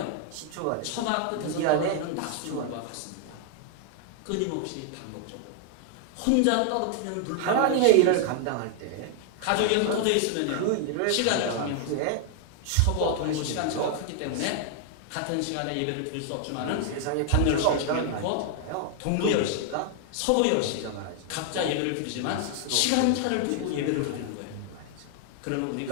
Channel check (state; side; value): different; both; correlation 0.00